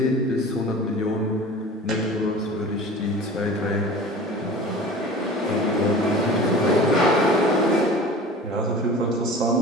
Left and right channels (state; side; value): normal; both; correlation 0.39